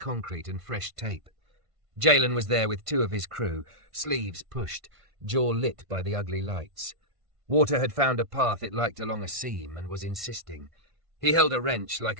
and fresh tape. Jalen was there with 2 of his crew, sleeves pushed, jaw lit by the ugly lights. Water had found a path it liked along a seam and was insisting. He held a wrench like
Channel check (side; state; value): left; late; 1.5 ms